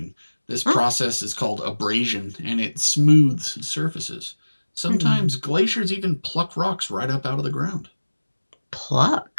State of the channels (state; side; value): inverted; both; correlation -1.00